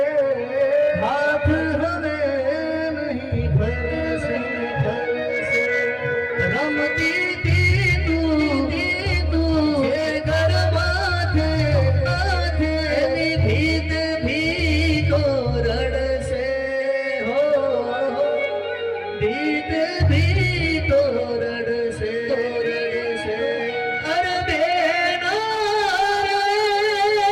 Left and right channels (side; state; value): both; identical; correlation 1.00